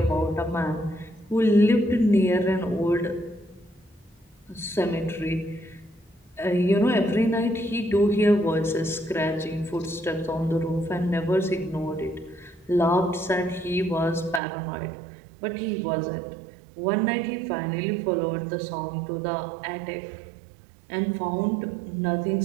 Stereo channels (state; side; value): drops out; left; at 14.4 s